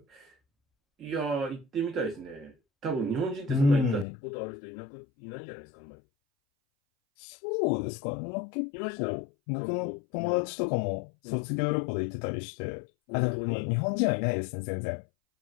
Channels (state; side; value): drops out; right; at 4.0 s